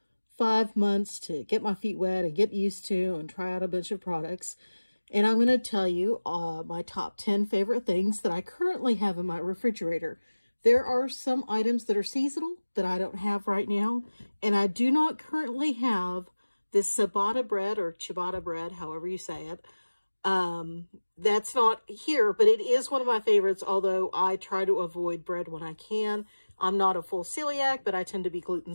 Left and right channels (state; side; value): inverted; both; correlation -1.00